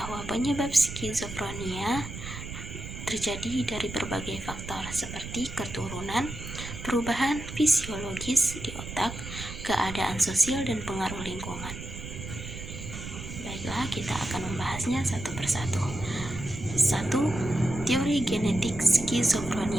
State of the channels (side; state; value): right; noise; rumble, 9 dB below the sound